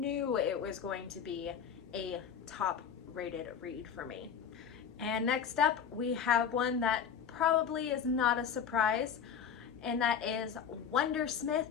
was going to be a top rated read for me. And next up, we have one that probably is not a surprise, and that is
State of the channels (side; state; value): right; quieter; 7.6 dB